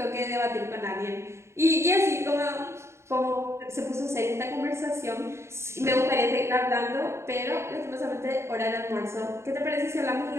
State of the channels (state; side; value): late; left; 0.13 ms